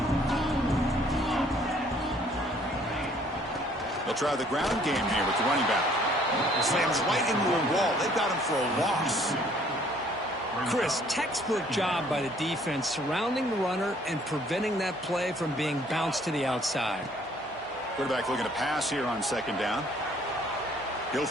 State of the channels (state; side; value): normal; both; correlation 0.60